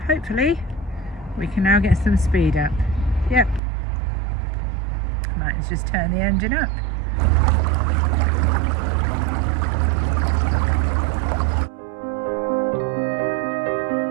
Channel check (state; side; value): drops out; left; at 3.6 s